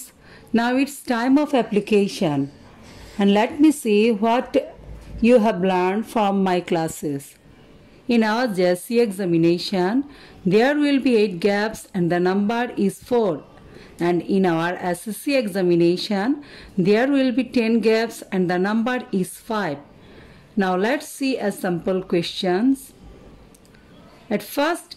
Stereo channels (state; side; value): identical; both; correlation 1.00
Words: now it's time of application, and let me see what you have learned from my classes. In our JSC examination, there will be 8 gaps and the number is 4. And in our SSC examination, there will be 10 gaps and the number is 5. Now let's see a sample questions. At first,